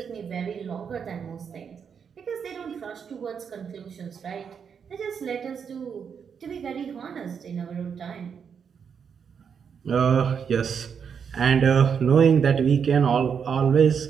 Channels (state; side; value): quieter; left; 6.9 dB